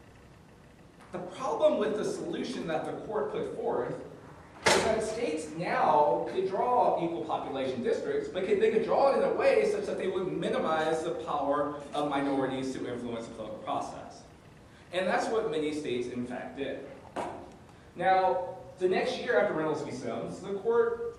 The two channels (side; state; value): both; identical; correlation 1.00